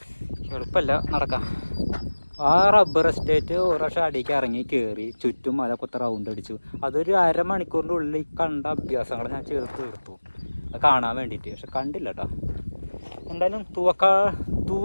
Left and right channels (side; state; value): both; inverted; correlation -1.00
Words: എളുപ്പമല്ല നടക്കാം. ആ റബ്ബർ എസ്റ്റേറ്റ് ഒരു പ്രാവശ്യം അടിക്ക് ഇറങ്ങി കയറി ചുറ്റും മല കൊത്ത റൗണ്ട് അടിച്ചു. അതൊരു അരമണിക്കൂറിൻ്റെ ഉള്ളിൽ കണ്ട അഭ്യാസങ്ങൾ ഞാൻ ചേർത്ത് തീർത്തു അത് കാണാൻ വേണ്ടിയിട്ട്. പക്ഷെ കണ്ടില്ല കേട്ടോ. എന്തായാലും